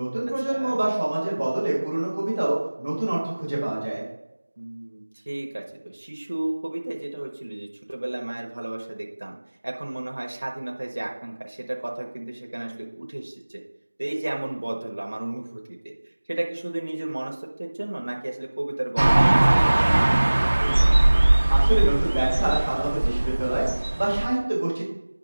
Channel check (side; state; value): both; inverted; correlation -1.00